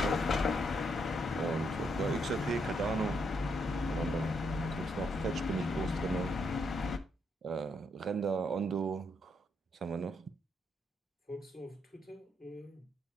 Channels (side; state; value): both; normal; correlation 0.76